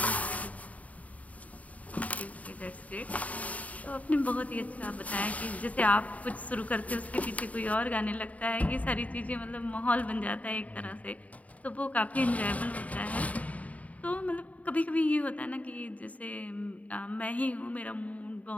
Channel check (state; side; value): late; right; 0.070 ms